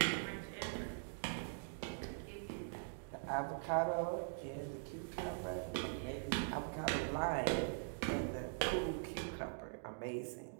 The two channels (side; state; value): left; silent; digital silence